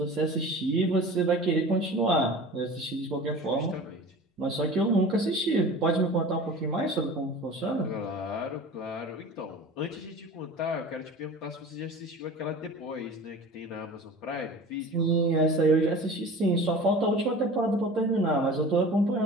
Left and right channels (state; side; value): normal; both; correlation 0.38